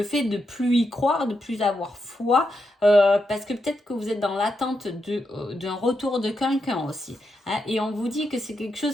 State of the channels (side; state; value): both; normal; correlation 0.84